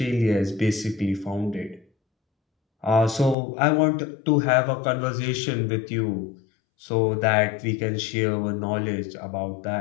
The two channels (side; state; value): right; drops out; at 3.4 s